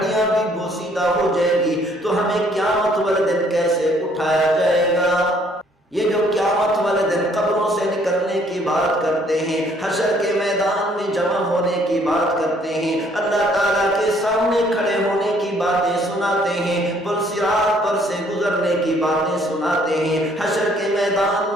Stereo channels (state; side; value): normal; both; correlation 0.63